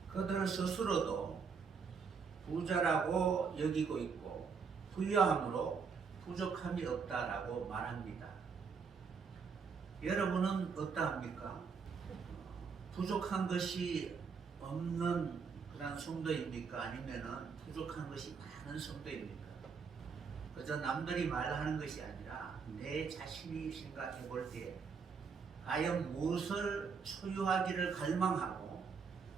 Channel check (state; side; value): quieter; left; 5.7 dB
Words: 그들 스스로도 부자라고 여기고 있고 부유함으로 부족함이 없다라고 말합니다. 여러분은 어떠합니까? 부족한 것이 없는 그런 성도입니까? 아니면은 부족한 것이 많은 성도입니까? 그저 남들이 말하는 것이 아니라 내 자신이 생각해 볼 때 과연 무엇을 소유하기를 갈망하고